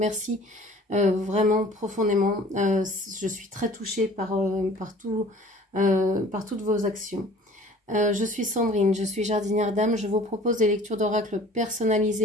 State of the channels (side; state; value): both; normal; correlation 0.48